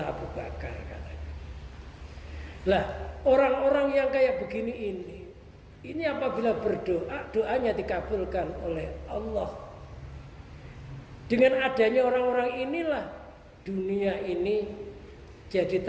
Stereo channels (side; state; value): both; identical; correlation 1.00